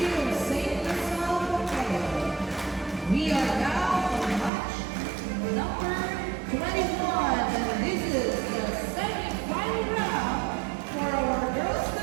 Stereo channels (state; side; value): drops out; left; at 4.5 s